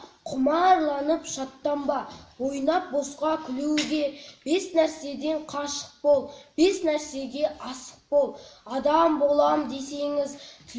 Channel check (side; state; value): both; identical; correlation 1.00